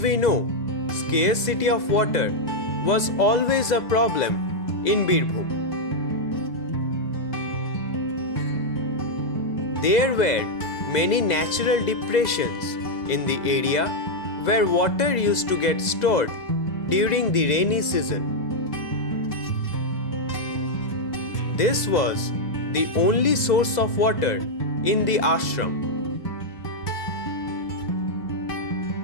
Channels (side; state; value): right; late; 2.0 ms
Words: know, scarcity of water was always a problem in Birbhum. There were many natural depressions in the area where water used to get stored during the rainy season. This was the only source of water in the ashram.